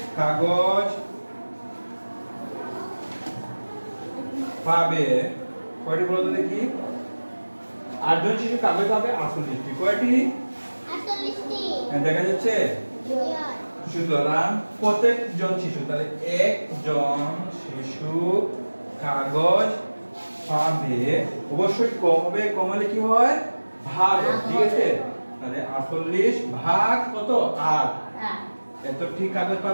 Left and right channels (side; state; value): both; inverted; correlation -1.00